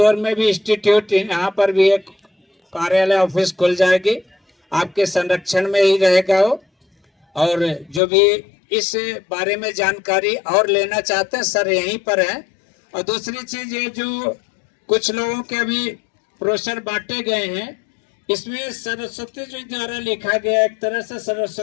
में भी इंस्टीट्यूट, यहाँ पर भी एक कार्यालय ऑफिस खुल जाएगी, आपके संरक्षण में ही रहेगा वो। और जो भी इस बारे में जानकारी और लेना चाहते हैं सर यहीं पर है। और दूसरी चीज ये जो कुछ लोगों के अभी ब्रोशर बांटे गए हैं, इसमें सरस्वती जी द्वारा लिखा गया, एक तरह से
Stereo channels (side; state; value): right; drops out; at 8.0 s